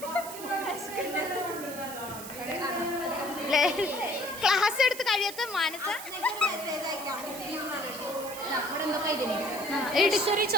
ക്ലാസ് എടുത്ത് കഴിയാത്ത മാനസ ലക്ഷറി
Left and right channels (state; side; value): noise; right; hiss, 11 dB below the sound